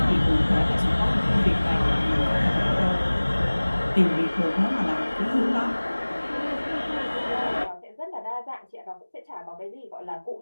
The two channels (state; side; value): inverted; both; correlation -1.00